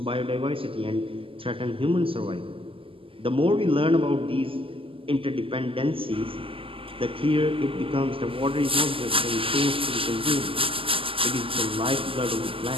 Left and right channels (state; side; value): late; left; 0.26 ms